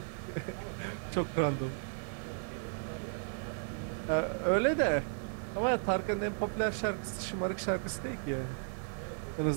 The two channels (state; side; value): silent; left; digital silence